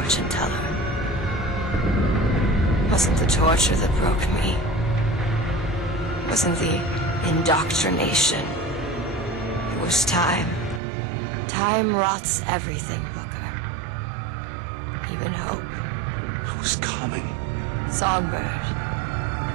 teller. Wasn't the torture that broke me. Wasn't the indoctrination. It was time. Time rots everything, Booker. Even hope. I was coming. Songbird.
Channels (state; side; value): drops out; left; at 10.8 s